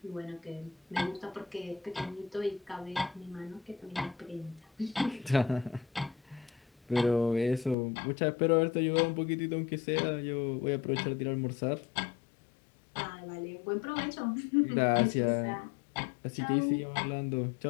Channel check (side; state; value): right; drops out; at 7.8 s